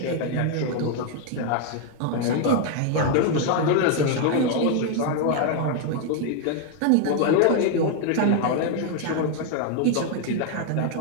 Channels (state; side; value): different; both; correlation 0.00